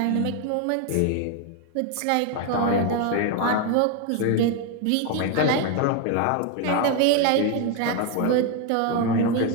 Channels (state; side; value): different; both; correlation 0.01